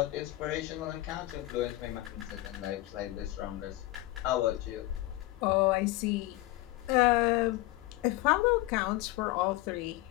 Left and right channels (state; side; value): quieter; right; 18.0 dB